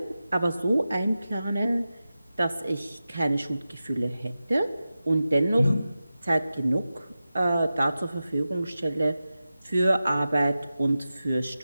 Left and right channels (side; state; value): both; inverted; correlation -0.94